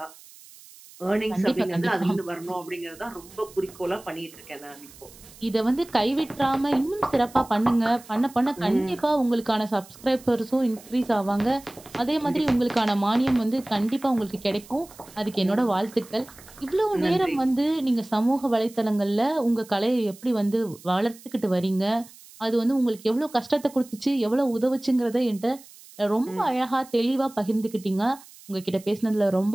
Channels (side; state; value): right; noise; hiss, 21 dB below the sound